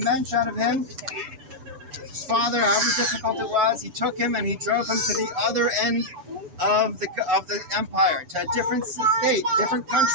out of him, his father, however difficult it was, he took him and he drove him to the other end of the empire, to a different state, different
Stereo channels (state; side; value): late; left; 7.0 ms